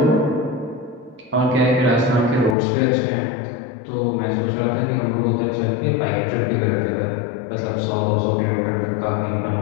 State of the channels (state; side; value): drops out; right; at 2.6 s